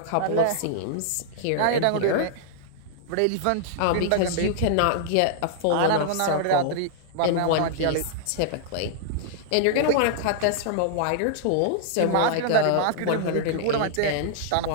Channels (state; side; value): different; both; correlation -0.01